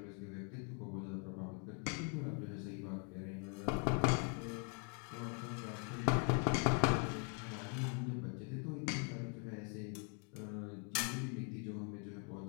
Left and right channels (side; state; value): right; quieter; 38.8 dB